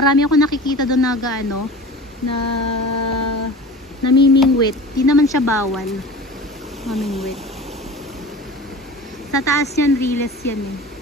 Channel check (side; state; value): both; normal; correlation 0.37